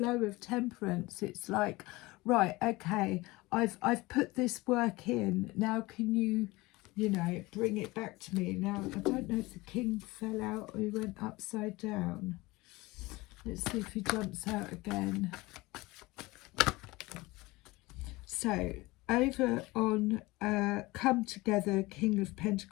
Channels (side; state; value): right; quieter; 21.5 dB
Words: of temperance, it's like, right, okay, I've put this work in. Now can you, you know, bring it back to me. Now, I don't know if the king fell out or he went upside down. Let's see if he jumps out again. So, over on Come Together, King of